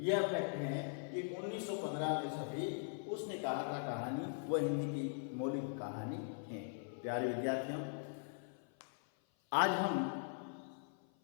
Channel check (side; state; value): right; silent; 51 dB below the other